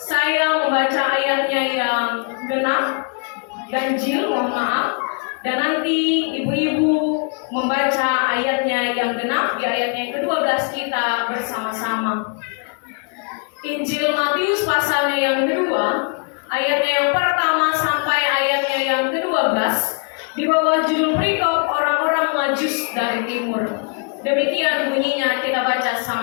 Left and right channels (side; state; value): right; quieter; 38.6 dB